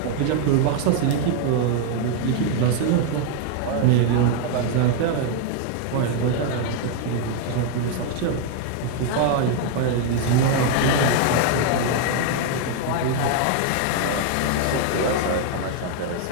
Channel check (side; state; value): both; different; correlation 0.00